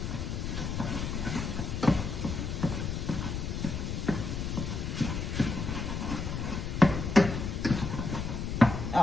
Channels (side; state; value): left; noise; rumble, 3 dB below the sound